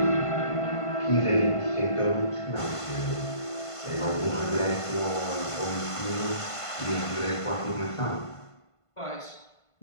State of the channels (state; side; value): late; right; 1.5 ms